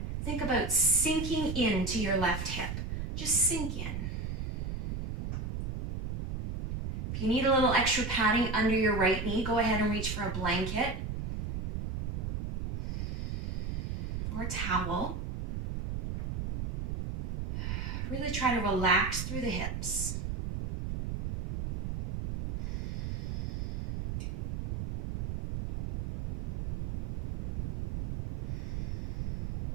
think about sinking into your left hip. Just sink in. If you need a little extra padding under your right knee, go ahead and reach for a blanket or a towel. Really try to relax through the hips.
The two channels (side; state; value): right; noise; rumble, 4 dB below the sound